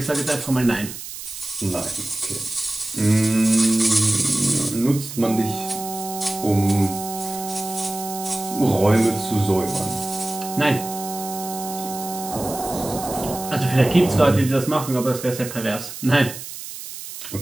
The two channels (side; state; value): right; noise; hiss, 10 dB below the sound